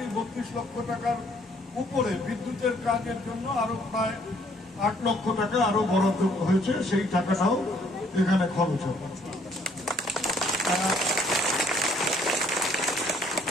টাকার উপরে বিদ্যুতের কাজের জন্য আরো প্রায় 8 লক্ষ টাকা আরো বরাদ্দ হয়েছে, সেই টাকাটাও এখানে খরচ হবে।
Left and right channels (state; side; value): normal; both; correlation 0.63